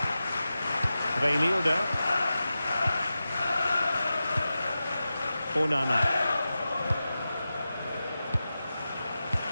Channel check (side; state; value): both; inverted; correlation -0.93